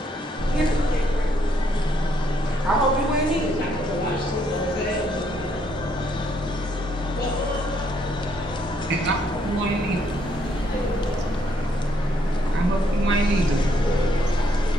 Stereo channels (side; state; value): both; normal; correlation 0.71